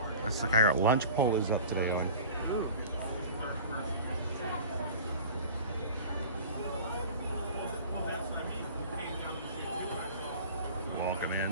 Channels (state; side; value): inverted; both; correlation -0.40